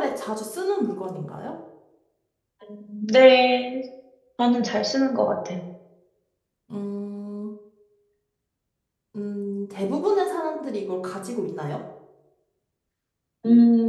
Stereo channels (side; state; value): both; identical; correlation 1.00